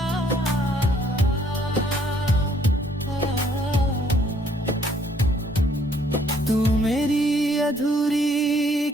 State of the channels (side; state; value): both; normal; correlation 0.65